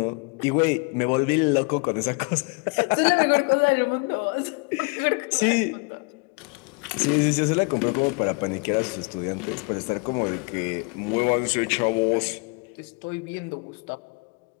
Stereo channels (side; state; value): right; quieter; 30.7 dB